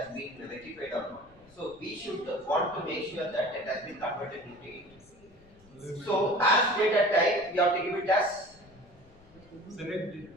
been rectified or not. So we should want to make sure that it has been converted into int. So as data type, we have to give it as Select it.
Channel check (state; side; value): noise; left; rumble, 27 dB below the sound